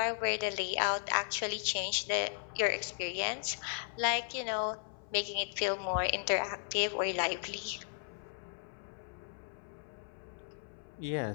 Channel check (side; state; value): right; silent; 54 dB below the other